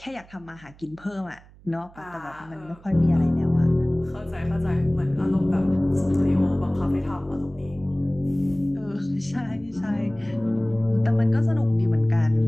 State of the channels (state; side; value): noise; right; hum, 24 dB below the sound